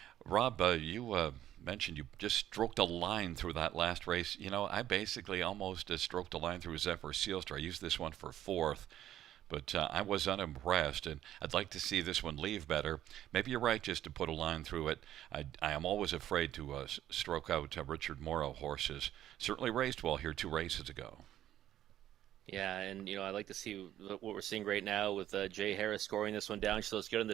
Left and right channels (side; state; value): left; quieter; 12.2 dB